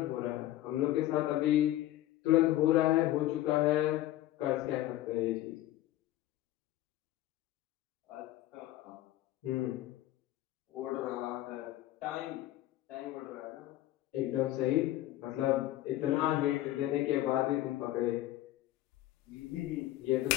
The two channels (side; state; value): right; quieter; 15.0 dB